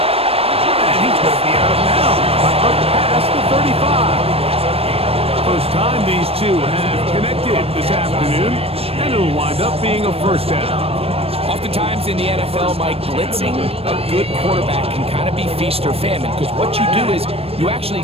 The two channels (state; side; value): late; left; 0.28 ms